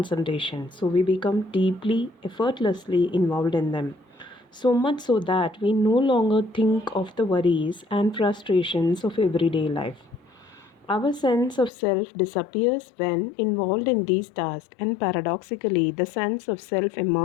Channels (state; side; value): drops out; right; at 11.7 s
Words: so we become deeply, effortlessly involved in them. So much so that we no longer think of the worries and frustrations of everyday life. Our sense of self disappears when involved in these tasks, and paradoxically, the sense of self